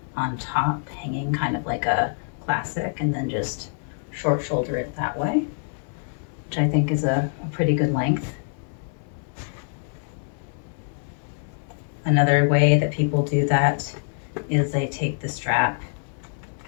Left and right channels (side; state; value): right; silent; digital silence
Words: on top hanging kind of like a classic, and then just short shoulder it that way, which I think is a pretty good length. Another way that people do that is they take the strap